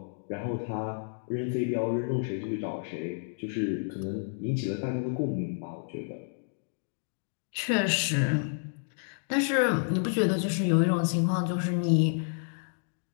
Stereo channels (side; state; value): right; silent; digital silence